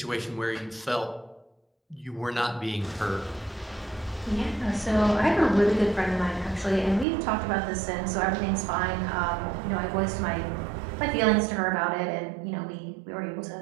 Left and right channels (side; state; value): left; drops out; at 7.1 s